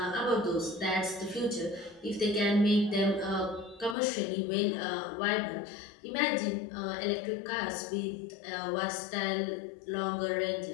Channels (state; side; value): drops out; right; at 4.0 s